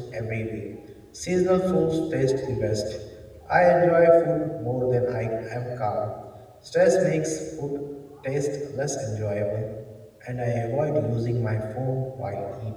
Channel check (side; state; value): both; identical; correlation 1.00